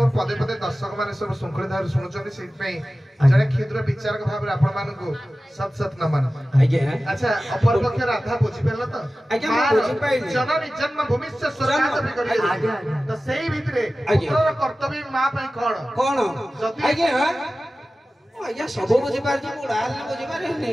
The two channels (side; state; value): both; normal; correlation 0.95